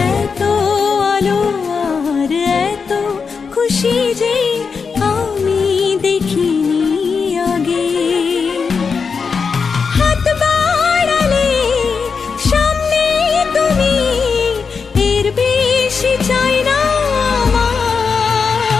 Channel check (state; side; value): quieter; right; 5.4 dB